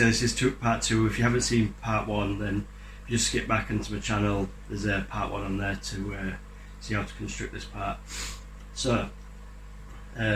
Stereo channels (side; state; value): both; identical; correlation 1.00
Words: this is part 2. If you haven't seen part 1, then if you just skip back into my channel, there's a part 1 on there to see how to construct this part. So